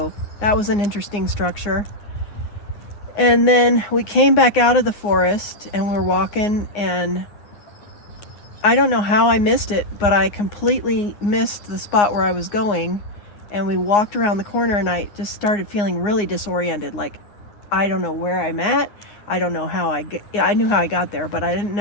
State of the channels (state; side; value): late; right; 9.7 ms